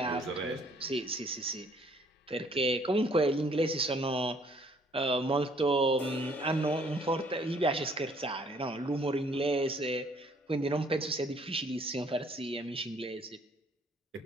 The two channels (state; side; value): normal; both; correlation 0.61